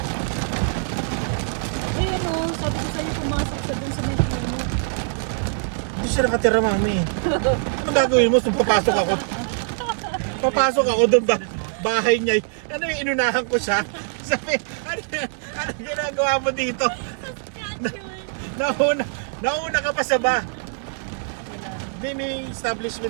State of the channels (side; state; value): left; silent; digital silence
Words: Eh, ano, sabi ko sa'yo pumasok sa dun sa may puno. Hindi siya nakatira, mami. Ano gagawin mo? So, papasok ako. Papasok ako doon ba? Bahay niya. Ano yung inunahan ko siya? Sabi, ano ginagawa mo dito? Nauna ka pa sa ba? Hindi, may